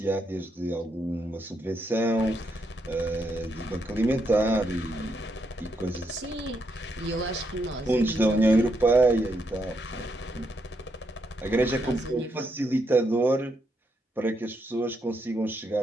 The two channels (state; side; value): normal; both; correlation 0.79